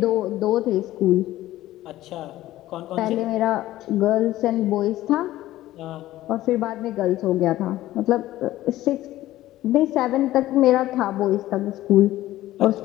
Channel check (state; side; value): quieter; right; 15.2 dB